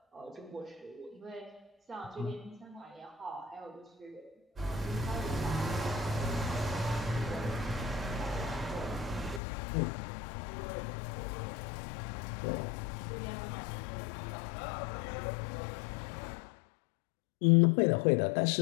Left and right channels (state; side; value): drops out; right; at 9.4 s